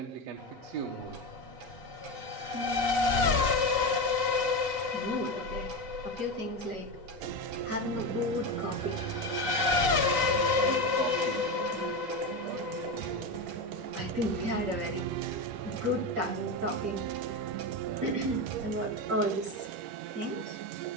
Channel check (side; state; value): left; late; 8.3 ms